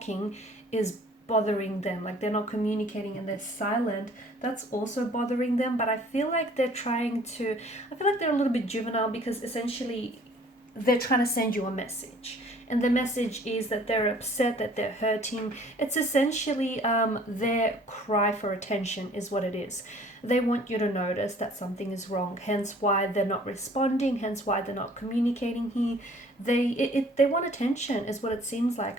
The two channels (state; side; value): normal; both; correlation 0.54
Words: is bothering them. Like they're not communicating and they're silent, that's also bothering them. But I feel like they're a little bit juvenile, because essentially they're trying to send you a message. And the message is that they're upset, that they're hurting. It's essentially their cry for attention is what it is. They want you to notice that something is wrong, hence why they're not responding, hence why they're not communicating here. they want attention is what it seems